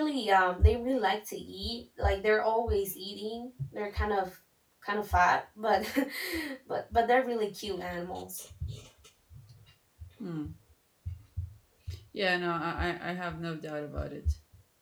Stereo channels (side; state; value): both; identical; correlation 1.00